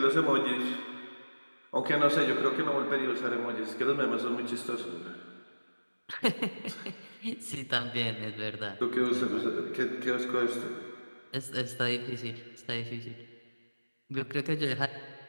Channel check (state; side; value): inverted; both; correlation -1.00